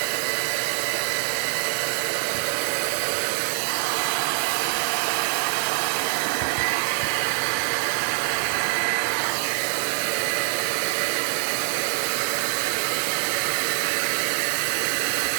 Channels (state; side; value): silent; left; 62 dB below the other